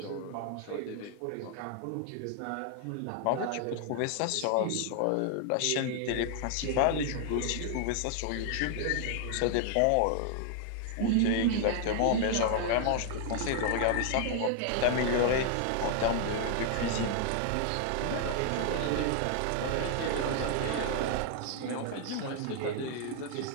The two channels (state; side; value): different; both; correlation 0.00